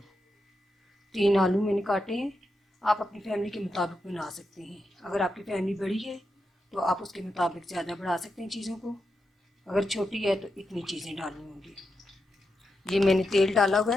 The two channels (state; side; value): normal; both; correlation 0.87